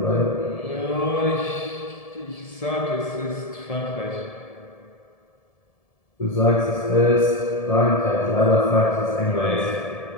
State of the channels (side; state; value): right; late; 1.7 ms